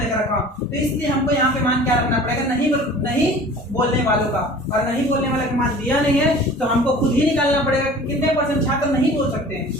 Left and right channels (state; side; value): normal; both; correlation 0.44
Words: का रखा हूँ। तो इसलिए हमको यहाँ पे मान क्या रखना पड़ेगा, नहीं बोलने वालों का। और नहीं बोलने वाले का मान दिया नहीं है, तो हमको खुद ही निकालना पड़ेगा कि कितने % छात्र नहीं बोल सकते